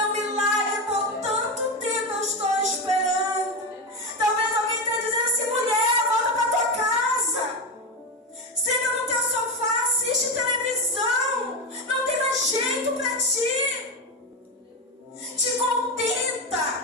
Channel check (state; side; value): normal; both; correlation 0.15